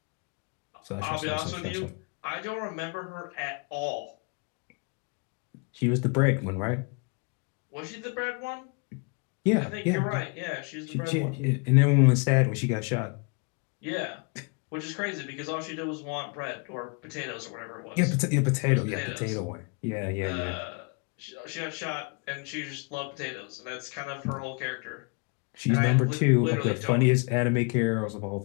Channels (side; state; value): right; quieter; 34.2 dB